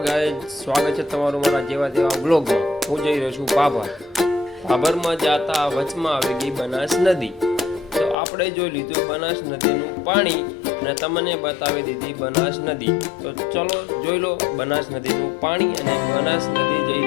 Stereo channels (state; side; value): drops out; right; at 8.2 s